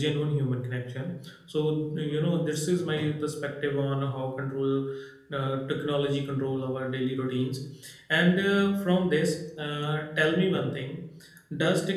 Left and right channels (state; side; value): identical; both; correlation 1.00